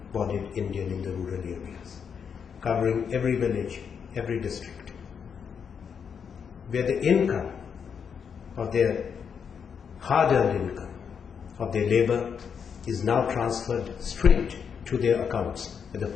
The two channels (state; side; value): quieter; right; 6.9 dB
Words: Indian in the rural areas, covering every village, every district, where the income of their hard-earned income, of their labor, is now transferred straight to their accounts, whether